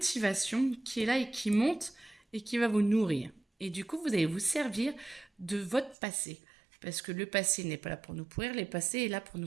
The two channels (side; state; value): left; drops out; at 6.0 s